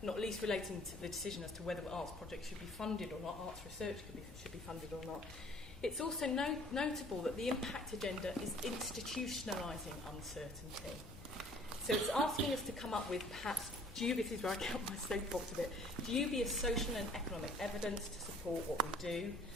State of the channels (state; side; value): normal; both; correlation 0.55